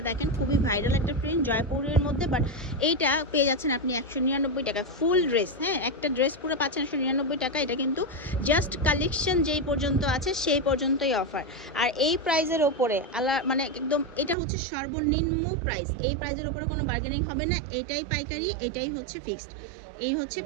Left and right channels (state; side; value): drops out; left; at 14.4 s